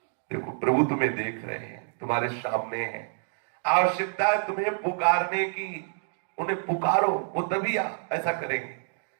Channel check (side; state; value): left; silent; digital silence